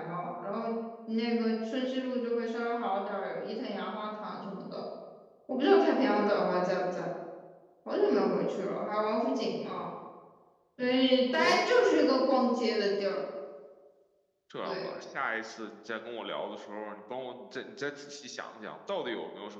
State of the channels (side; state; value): both; identical; correlation 1.00